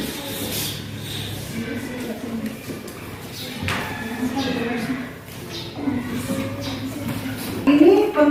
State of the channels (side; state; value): both; identical; correlation 1.00